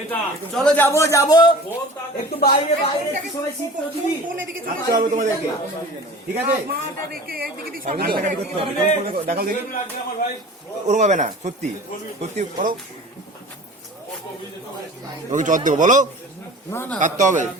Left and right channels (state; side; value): normal; both; correlation 0.41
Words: চলো যাবো যাবো একটু বাইরে বাইরে একটু সবাই শীত দিবি আসতে হবে তোমাদেরকে, ঠিক আছে? কান্নাকাটি করতে হবে, দেখাও দেখি। ওরকম হবে না, সত্যি সত্যি করো। ওকে চট দেবো, বলো। কাটতে হবে,